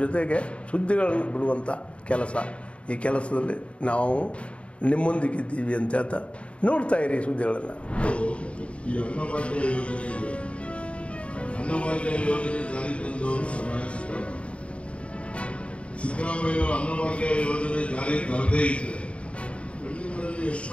ಸುದ್ದಿಗಳನ್ನು ಬಿಡುವಂಥ ಕೆಲಸ. ಈ ಕೆಲಸದಲ್ಲಿ ನಾವು ನಿಮ್ಮೊಂದಿಗಿದ್ದೀವಿ ಅಂತ ಹೇಳ್ತಾ ನೋಡ್ತಾ ಇರಿ ಸುದ್ದಿಗಳನ್ನು. ಈ ಅನ್ನಭಾಗ್ಯ ಯೋಜನೆ ಜಾರಿ ತಂದವರು ಸಿದ್ದರಾಮಯ್ಯ ಅನ್ನಭಾಗ್ಯ ಯೋಜನೆ ಜಾರಿ ತರದೇ ಇದ್ದರೆ ಹಳ್ಳಿಗಳಲ್ಲಿ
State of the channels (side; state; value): right; late; 0.061 ms